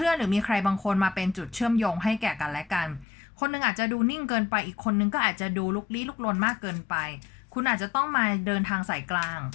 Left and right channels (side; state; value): right; drops out; at 3.1 s